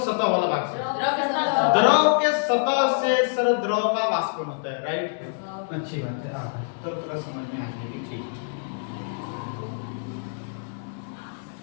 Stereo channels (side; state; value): right; silent; digital silence